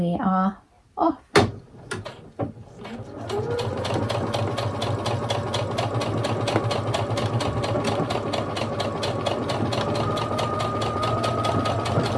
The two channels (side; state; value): both; identical; correlation 1.00